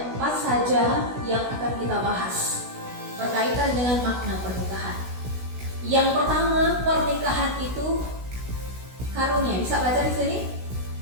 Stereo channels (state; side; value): late; left; 16 ms